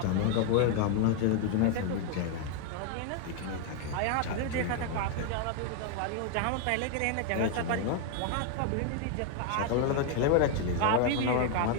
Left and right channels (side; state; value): both; different; correlation 0.00